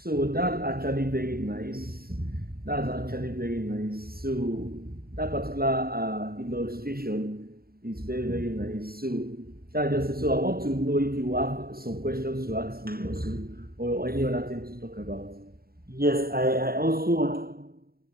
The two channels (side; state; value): left; late; 0.44 ms